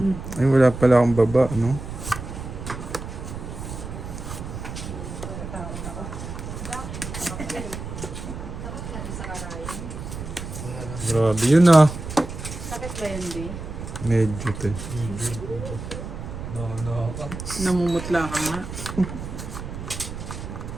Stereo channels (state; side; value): noise; right; rumble, 8 dB below the sound